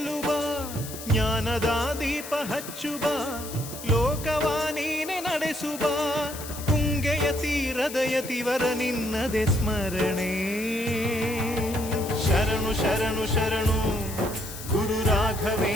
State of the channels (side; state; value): left; noise; hiss, 11 dB below the sound